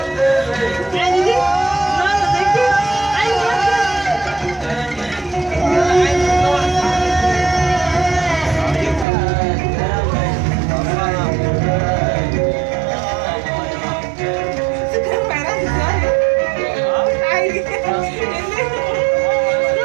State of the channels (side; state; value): left; drops out; at 9.1 s